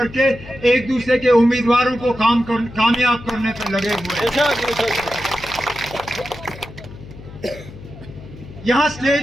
एक दूसरे के उम्मीदवारों को कामयाब करने पे लगे हुए हैं। यहाँ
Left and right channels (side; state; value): left; noise; hum, 16 dB below the sound